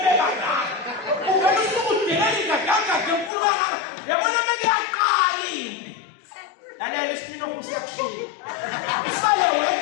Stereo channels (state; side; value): drops out; right; at 3.3 s